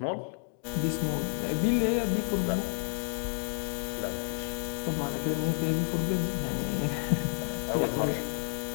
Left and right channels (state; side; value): silent; right; digital silence